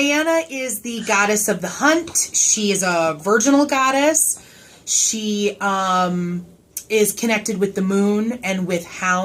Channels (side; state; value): both; identical; correlation 1.00